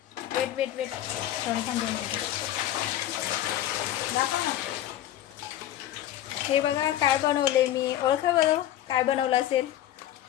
वेट वेट वेट श्रावणी थांबून. हे बघा काय बनवले मी. ओळखा बरं काय बनवलं असेल.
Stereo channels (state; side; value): quieter; right; 12.5 dB